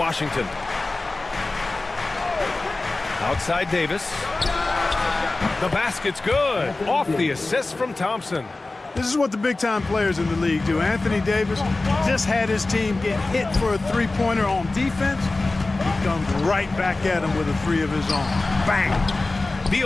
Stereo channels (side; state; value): right; quieter; 3.2 dB